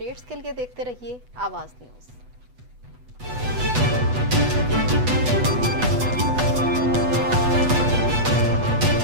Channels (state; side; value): late; left; 8.1 ms